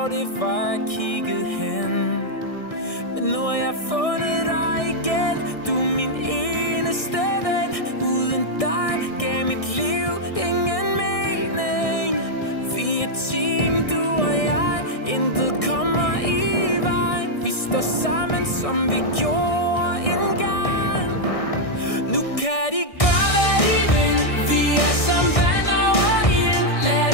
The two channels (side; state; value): right; late; 1.6 ms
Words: det var, jeg kiggede hen. Men nu har jeg fundet dig igen, du er min eneste ven. Uden dig gav mit liv ingen mening. Vi er et team, du og jeg, intet kommer i vejen. Vi står sammen, som vi gjorde engang. Nu kan de gøre, hvad de vil. Vi er som vand over ild. Lad